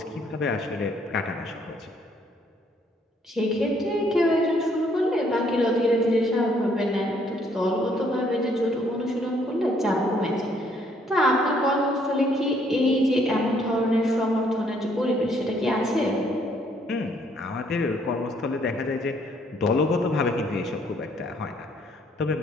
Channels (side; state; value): both; normal; correlation 0.66